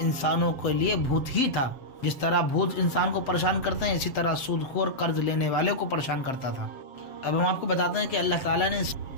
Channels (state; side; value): late; right; 7.4 ms